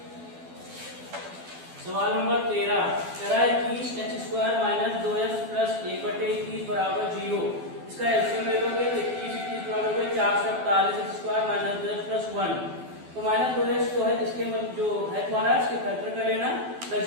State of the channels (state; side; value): late; left; 12 ms